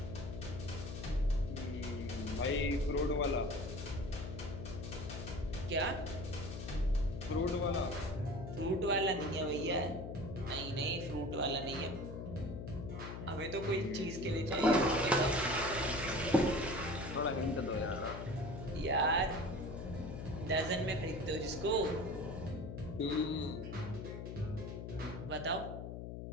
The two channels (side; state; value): left; noise; hum, 7 dB below the sound